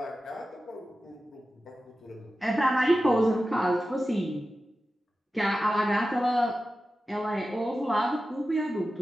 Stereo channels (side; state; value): both; normal; correlation 0.93